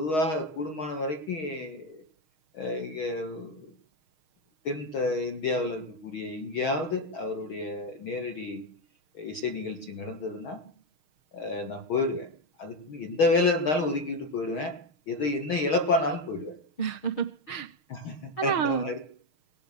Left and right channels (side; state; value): right; late; 6.4 ms